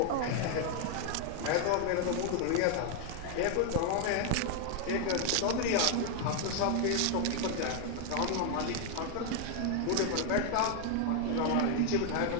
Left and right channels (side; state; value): both; different; correlation 0.00